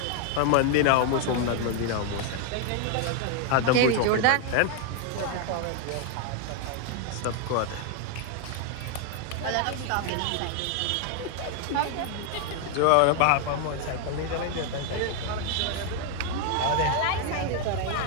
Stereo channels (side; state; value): both; different; correlation 0.00